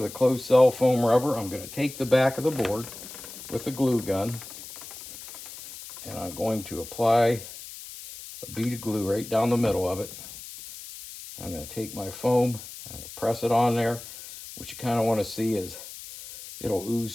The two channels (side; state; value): left; noise; hiss, 13 dB below the sound